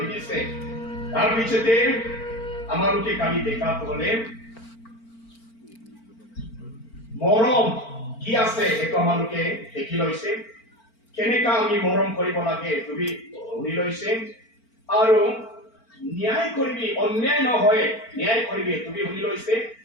দিছে তাৰ পিছতে আমালোকে কালি দেখাটো হলে মৰম কি আছে সেইটো আমালোকে দেখি লৈছে কেনেকা আমি মৰম কৰিব লাগে তুমি শুনি লৈছে আৰু ন্যায় কৰিবি অন্যায় নহয় ন্যায় কৰিবি তুমি শুনি লৈছে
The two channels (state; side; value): late; right; 4.4 ms